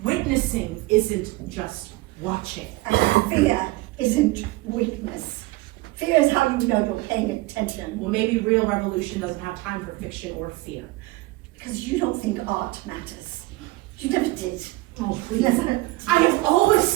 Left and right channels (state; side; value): quieter; left; 20.6 dB